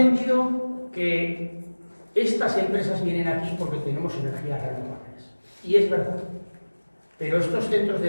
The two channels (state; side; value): inverted; both; correlation -1.00